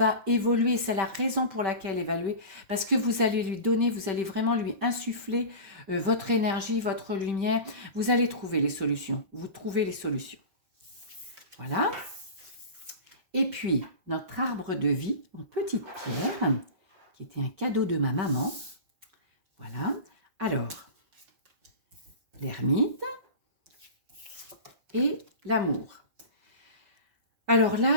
évoluer, c'est la raison pour laquelle évaluer, parce que vous allez lui donner, vous allez vraiment lui insuffler votre énergie, votre lumière, vous allez trouver les solutions, vous trouvez les solutions. Voilà. Et puis, notre arbre de vie en petite pierre, qui était un cadeau de ma maman. Voilà. Alors, l'ermite et l'amour. Alors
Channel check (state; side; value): late; left; 5.2 ms